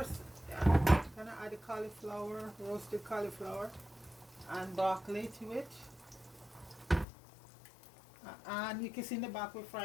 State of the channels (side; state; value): right; drops out; at 7.1 s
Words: gonna add the cauliflower, roasted cauliflower, and broccoli to it. And you can see in the back we're